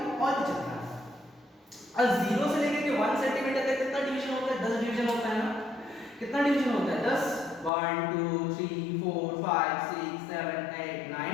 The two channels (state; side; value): drops out; right; at 7.7 s